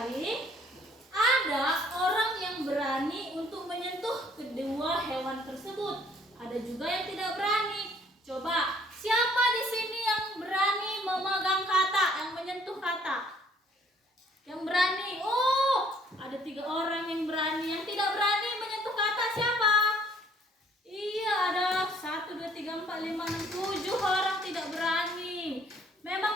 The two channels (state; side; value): normal; both; correlation 0.61